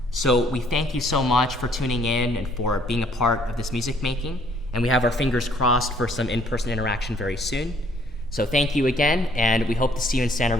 So we thank you so much for tuning in and for being a part of this music making. And we have our fingers crossed for some in-person interaction very soon. So thank you again, and we hope to see you in Santa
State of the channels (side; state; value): both; normal; correlation 0.63